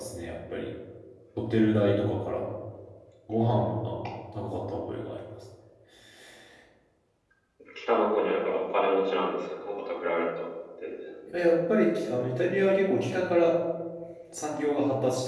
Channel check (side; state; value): both; identical; correlation 1.00